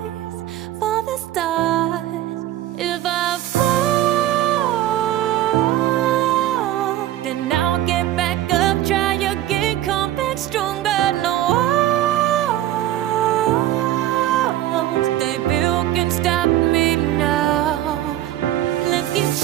for the stars. If I fall, then I'll get back up, try again, come back stronger. No walls they built can stop me now. Let's keep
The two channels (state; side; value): quieter; left; 13.5 dB